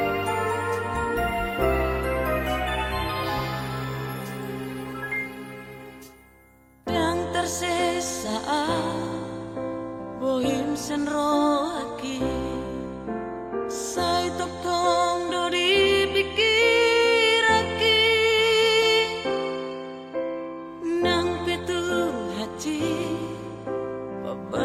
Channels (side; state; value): both; identical; correlation 1.00